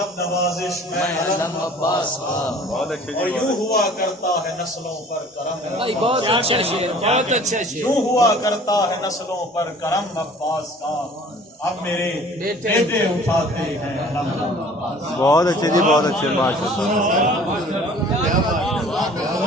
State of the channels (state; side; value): normal; both; correlation 0.49